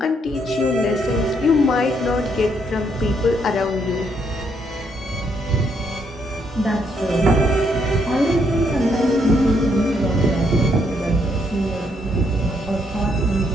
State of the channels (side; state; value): both; normal; correlation 0.73